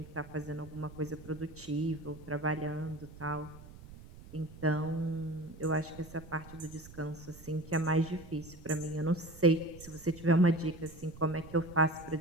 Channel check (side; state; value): right; noise; rumble, 17 dB below the sound